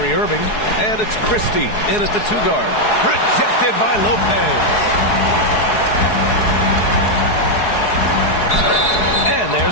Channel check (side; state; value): right; late; 4.7 ms